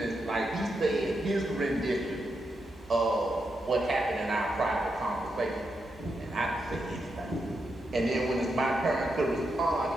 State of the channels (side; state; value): both; normal; correlation 0.84